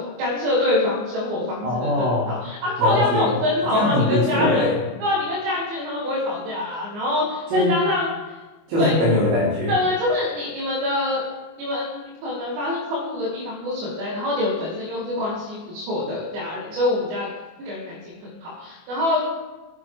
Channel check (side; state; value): left; late; 24 ms